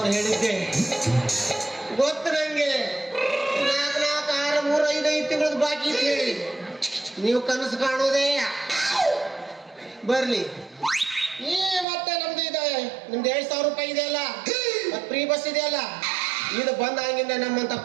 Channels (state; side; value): drops out; left; at 11.9 s